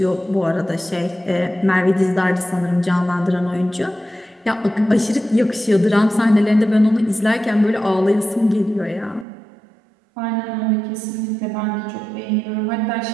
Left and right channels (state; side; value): drops out; left; at 9.2 s